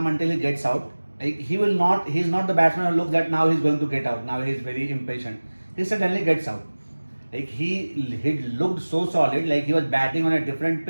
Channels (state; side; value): inverted; both; correlation -1.00